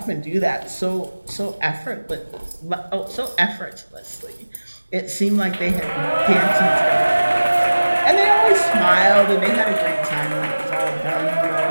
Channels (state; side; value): inverted; both; correlation -1.00